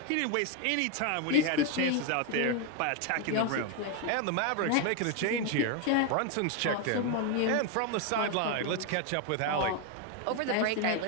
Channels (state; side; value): different; both; correlation 0.01